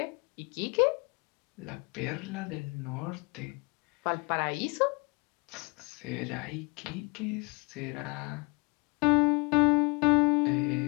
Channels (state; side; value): quieter; right; 30.8 dB